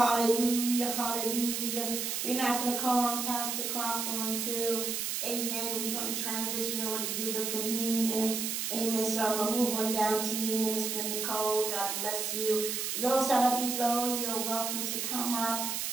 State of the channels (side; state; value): right; noise; hiss, 1 dB below the sound